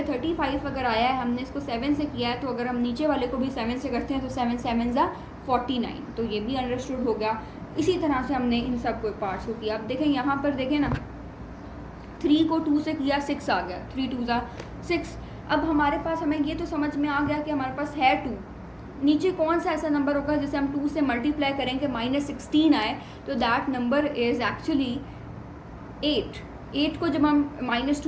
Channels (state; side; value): identical; both; correlation 1.00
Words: 35 अगर आया है, हमने इसको 7 से किया है, तो अगर हम नीचे वाले को भी 7 से करते हैं तो 7 7 ज़ा 49। तो ये भी अंडरस्टूड हो गया। इसी तरह से हमने इन सब को पार्ट्स को किया। अब देखें यहाँ पर देखें ना, 3 को 2 से किया, 6 आ गया, 3 2 ज़ा 6। अब हमारे पास, हमें ये तो समझ में आ गया कि हमारे पास है 2, नीचे कौन सा ऐसा नंबर होगा जिसे हम 2 से मल्टीप्लाई करेंगे -16 आए, तो दैट नंबर इज़ एक्चुअली 8। 8 को जब हम